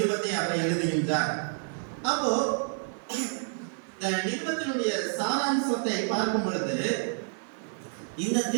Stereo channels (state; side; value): silent; left; 59 dB below the other